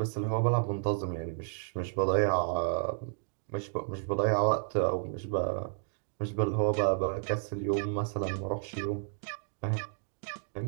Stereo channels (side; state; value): left; silent; digital silence